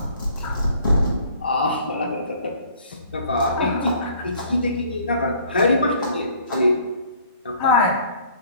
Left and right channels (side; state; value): both; inverted; correlation -0.56